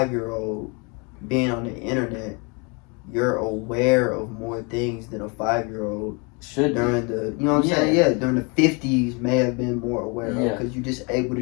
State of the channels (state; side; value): quieter; right; 31.7 dB